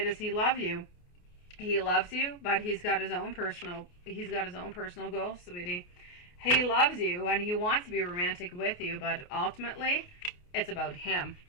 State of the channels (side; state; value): right; late; 28 ms